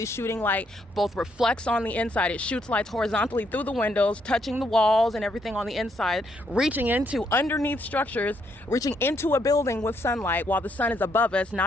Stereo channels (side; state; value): both; normal; correlation 0.74